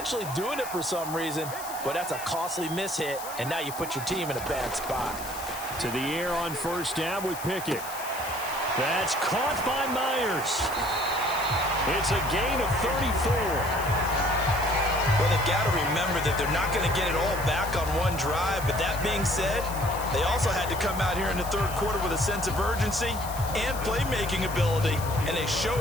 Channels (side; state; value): left; noise; hiss, 12 dB below the sound